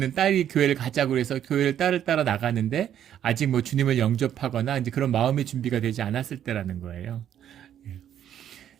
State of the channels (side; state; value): left; quieter; 10.2 dB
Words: 딸이 교회를 가자고 해서 교회를 딸을 따라 나가는데 아직 주님을 영접하거나 이제 그런 마음의 준비가 되지 않았을 때라는 거예요.